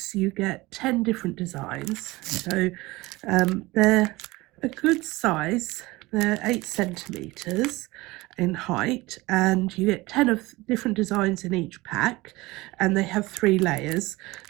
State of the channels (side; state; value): left; quieter; 20.8 dB